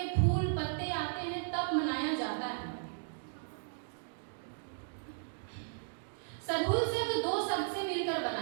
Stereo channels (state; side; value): silent; left; digital silence